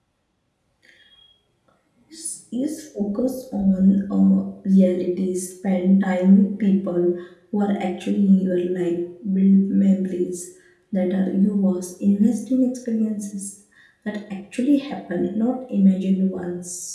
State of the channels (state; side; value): identical; both; correlation 1.00